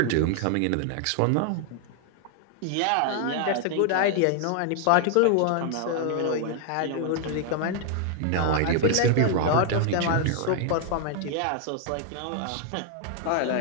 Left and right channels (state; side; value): different; both; correlation 0.00